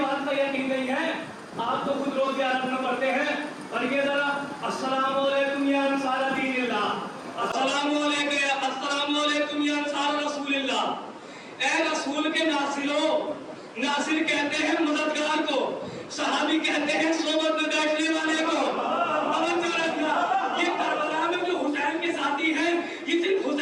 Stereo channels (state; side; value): identical; both; correlation 1.00